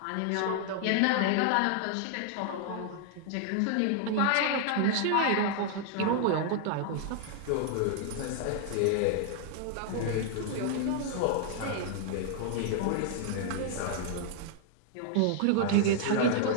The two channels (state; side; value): different; both; correlation 0.00